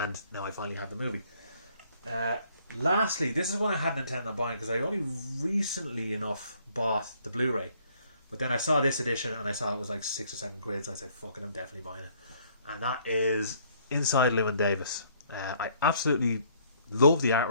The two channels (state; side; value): inverted; both; correlation -0.63